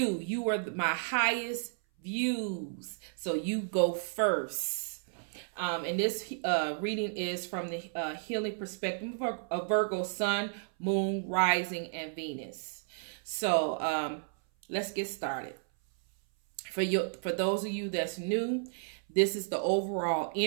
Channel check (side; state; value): left; silent; 56 dB below the other